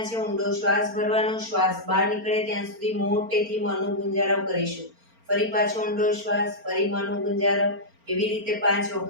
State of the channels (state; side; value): late; left; 4.4 ms